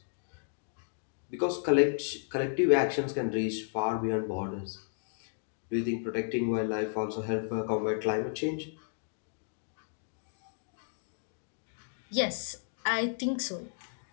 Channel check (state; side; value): silent; right; digital silence